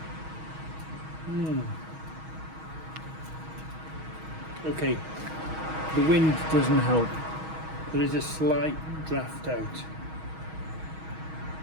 Okay, the wind doesn't help. There is a slight draft out.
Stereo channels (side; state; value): left; late; 6.3 ms